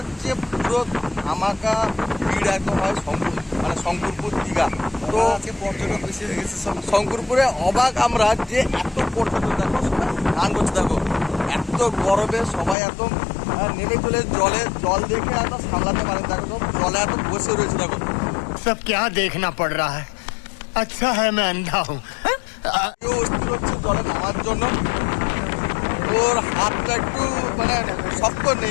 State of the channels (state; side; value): drops out; right; at 12.8 s